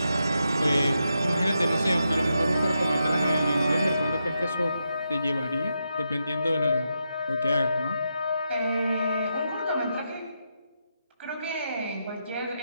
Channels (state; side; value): inverted; both; correlation -0.85